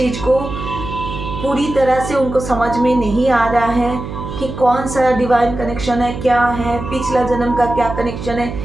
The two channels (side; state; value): right; noise; hum, 8 dB below the sound